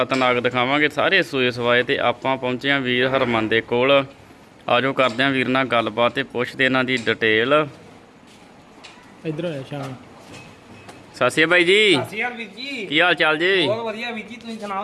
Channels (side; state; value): both; identical; correlation 1.00